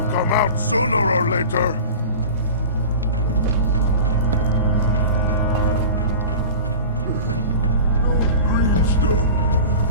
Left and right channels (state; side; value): inverted; both; correlation -0.36